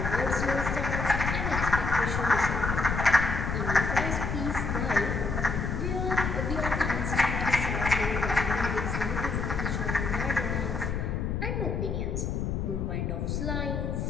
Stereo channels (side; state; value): left; noise; rumble, 1 dB below the sound